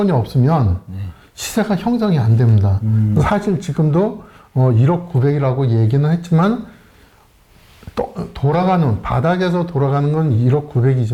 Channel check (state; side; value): identical; both; correlation 1.00